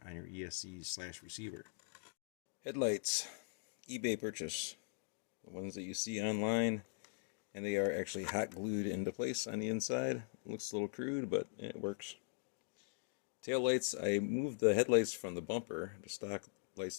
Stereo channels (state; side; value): silent; right; digital silence